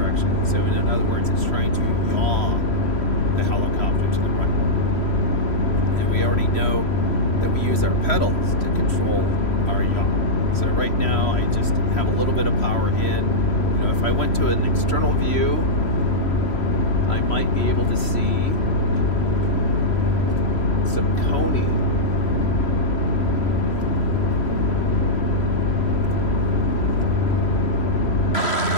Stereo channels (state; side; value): late; right; 3.1 ms